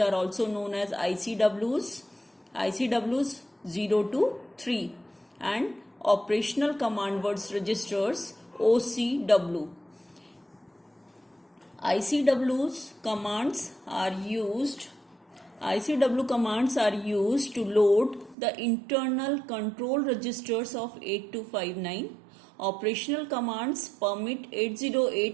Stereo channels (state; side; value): drops out; left; at 18.4 s